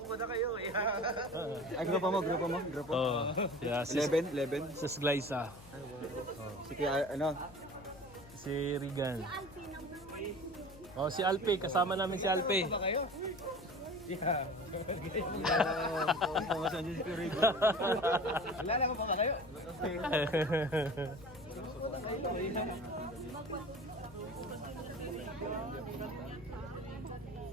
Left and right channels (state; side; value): noise; left; hum, 19 dB below the sound